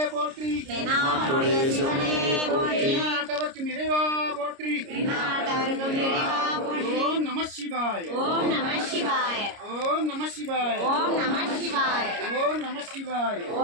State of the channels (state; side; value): late; left; 30 ms